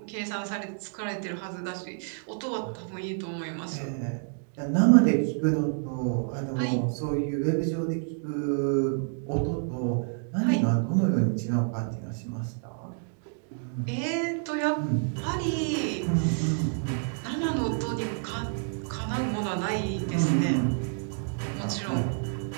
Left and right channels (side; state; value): left; silent; 59 dB below the other